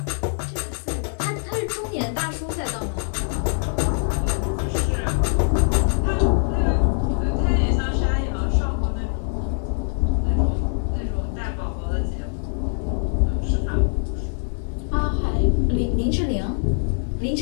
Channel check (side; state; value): right; silent; digital silence